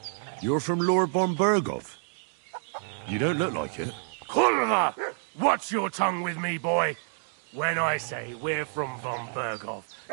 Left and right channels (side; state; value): left; silent; digital silence